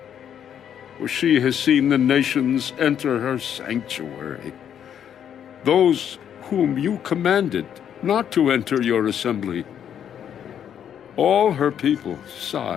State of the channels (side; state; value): right; quieter; 9.1 dB